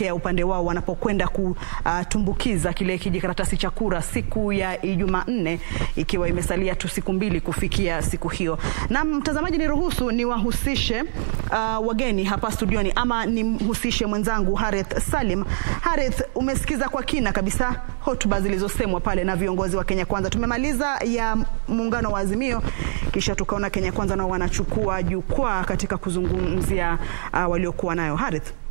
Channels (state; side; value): silent; left; digital silence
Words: upande wao wanapokwenda kutumbukiza kile kijikaratasi cha kura siku ya Jumanne, ikiwa imesalia tu siku mbili kufikia siku hiyo. Na mtazamaji, niruhusu niwahusishe wageni hapa studioni, ama nimhusishe mwenzangu Harith Salim. Harith, umesikiza kwa kina kabisa hotuba zilizosemwa pale na viongozi wa Kenya Kwanza. Tumemaliza ya muungano wa Azimio, kisha tukaona Kenya Kwanza nao wanachukua jukwaa katika kuzungumzia waliokuwa nayo. Harith,